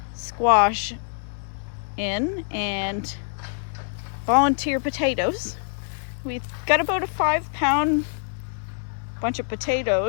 squash in and volunteer potatoes. We've got about a 5-pound bunch of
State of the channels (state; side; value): silent; right; 58 dB below the other